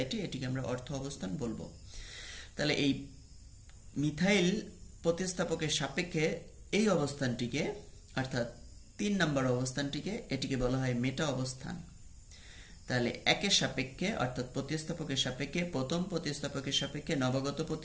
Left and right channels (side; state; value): both; identical; correlation 1.00